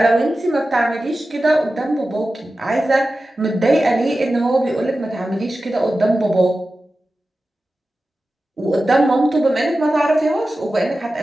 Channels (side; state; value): both; normal; correlation 0.94